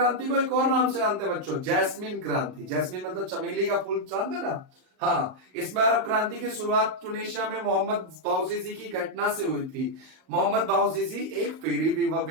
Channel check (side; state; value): left; late; 38 ms